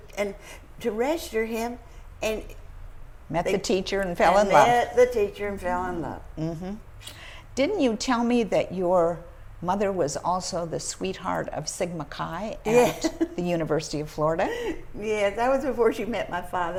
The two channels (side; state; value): both; identical; correlation 1.00